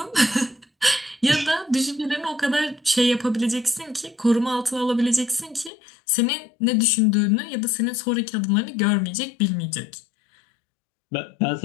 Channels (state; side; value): drops out; right; at 5.7 s